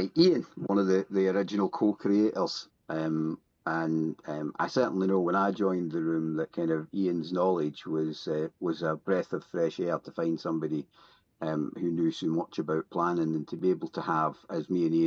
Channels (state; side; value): identical; both; correlation 1.00